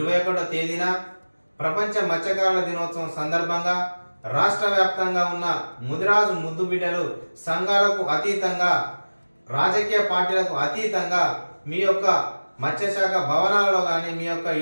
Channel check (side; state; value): both; inverted; correlation -1.00